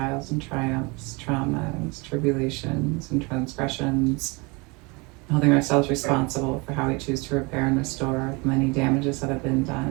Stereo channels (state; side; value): quieter; left; 27.8 dB